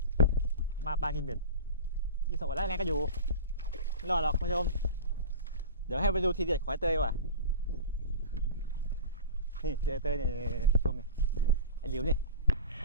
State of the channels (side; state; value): both; inverted; correlation -0.30